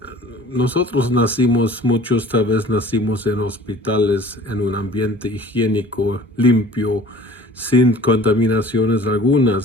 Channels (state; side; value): normal; both; correlation 0.47